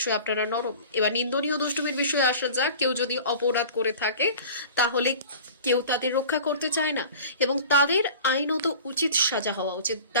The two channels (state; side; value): inverted; both; correlation -0.40